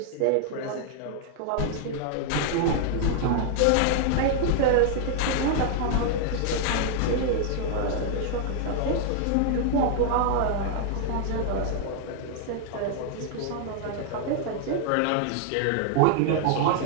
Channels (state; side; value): different; both; correlation 0.00